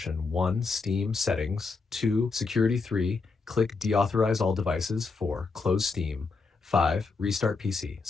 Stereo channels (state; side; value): quieter; right; 4.3 dB